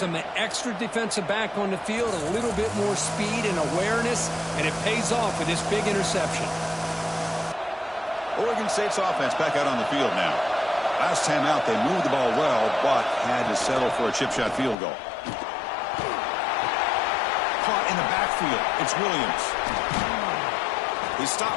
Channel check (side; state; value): right; drops out; at 14.8 s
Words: an extra defensive back on the field, a little bit more speed and awareness, and it pays off with this big interception. Oregon State's offense back out on the field now. Last time out, they moved the ball well, but had to settle for a chip shot field goal. Caught in the backfield. It's Williams. They stop